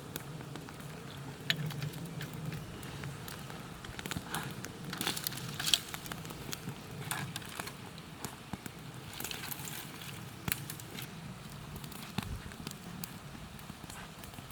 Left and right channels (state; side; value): identical; both; correlation 1.00